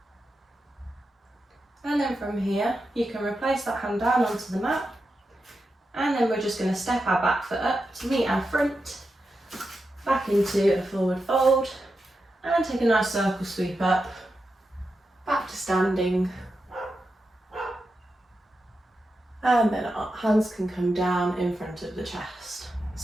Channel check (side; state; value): both; normal; correlation 0.89